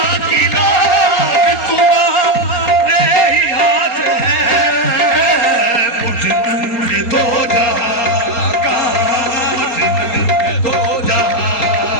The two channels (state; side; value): late; right; 4.2 ms